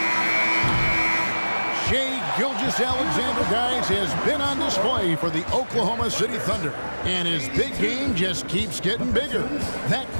Shai Gilgeous-Alexander, guys, has been on display for the Oklahoma City Thunder. And his big game just keeps getting bigger. That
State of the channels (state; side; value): inverted; both; correlation -1.00